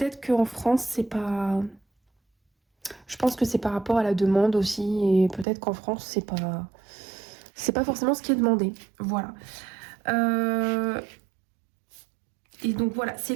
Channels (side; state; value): left; drops out; at 5.5 s